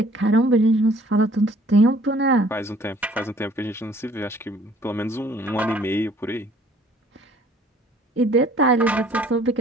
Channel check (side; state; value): both; normal; correlation 0.56